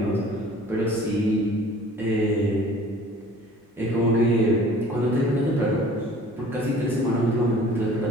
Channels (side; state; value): both; normal; correlation 0.48